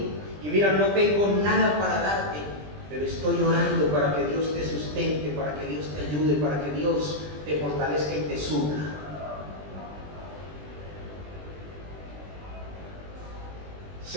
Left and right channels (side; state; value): left; late; 20 ms